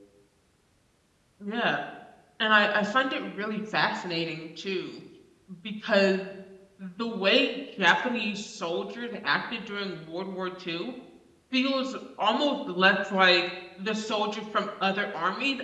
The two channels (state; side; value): identical; both; correlation 1.00